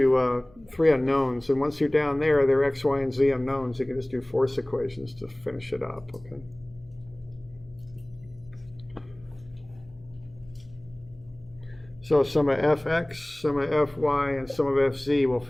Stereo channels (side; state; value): left; noise; hum, 26 dB below the sound